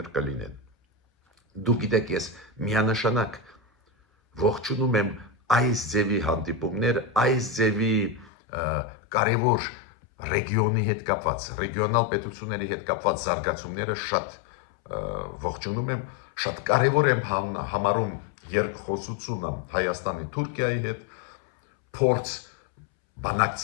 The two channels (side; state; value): right; drops out; at 8.3 s